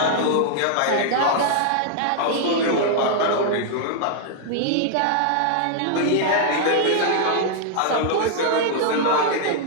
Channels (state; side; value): different; both; correlation -0.01